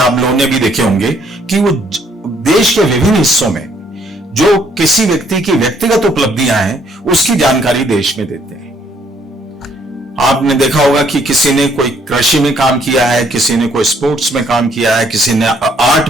लोगों ने भी देखे होंगे, कि वो देश के विभिन्न हिस्सों में जो किसी व्यक्ति की व्यक्तिगत उपलब्धियां हैं, उसकी जानकारी देश में देते हैं। आपने देखा होगा कि किसी ने कोई कृषि में काम किया है, किसी ने कोई स्पोर्ट्स में काम किया है, किसी ने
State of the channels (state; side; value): normal; both; correlation 0.66